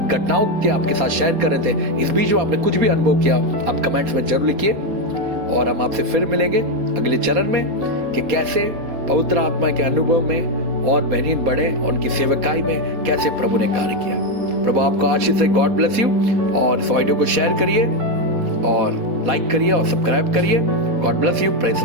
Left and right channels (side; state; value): left; late; 4.3 ms